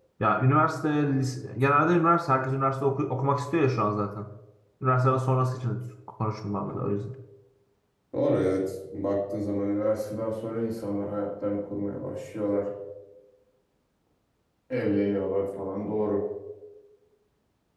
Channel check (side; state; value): both; identical; correlation 1.00